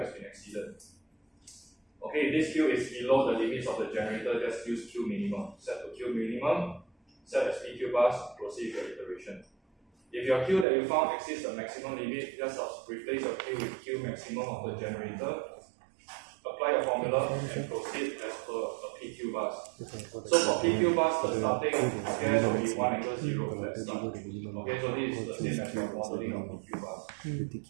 been exceeded. Okay, if this Q is below the limits of the generator, just use Q minimum. Set to Q minimum, set as PQ bus, proceed with your iteration. If your Q that you found exceeds the maximum limit, just replace your Q with Q maximum of the generator, apply a formula, and proceed as per a PQ bus. So for PQ bus, the starting gas will be 1 angle 0 flat start. Okay, so this is the same as your modeling of PQ bus.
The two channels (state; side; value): drops out; left; at 10.7 s